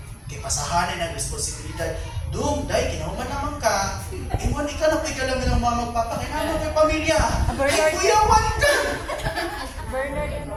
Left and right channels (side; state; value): both; identical; correlation 1.00